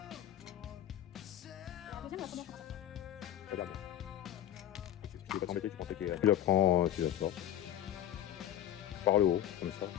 Regarde. Je ne vais pas t'embêter, tu pensais qu'il y a... Tu la prends, tu la sors. Par le haut, comme ça,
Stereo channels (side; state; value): right; quieter; 11.8 dB